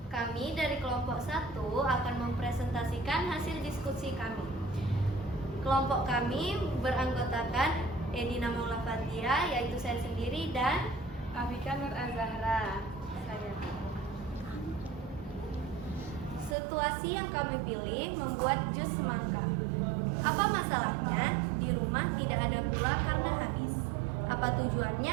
Kami dari kelompok 1 akan mempresentasikan hasil diskusi kami. Kelompok kami beranggotakan Edina Maula Fatia, yaitu saya sendiri, dan Afika Nur Azahra. Saya. situasi yang kami pilih membuat jus semangka. Apa masalahnya? Di rumah tidak ada gula karena habis. Apa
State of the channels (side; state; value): left; drops out; at 16.6 s